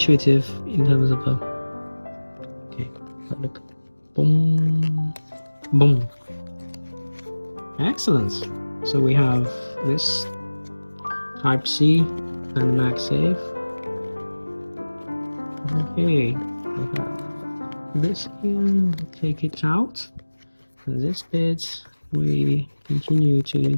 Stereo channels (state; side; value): inverted; both; correlation -1.00